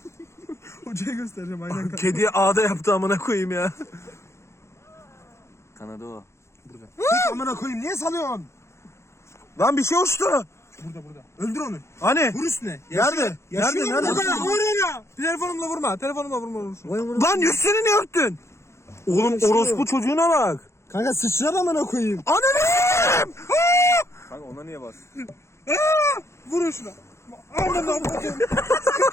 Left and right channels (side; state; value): right; late; 0.13 ms